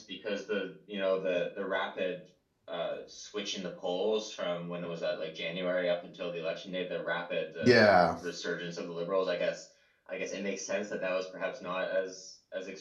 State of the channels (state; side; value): identical; both; correlation 1.00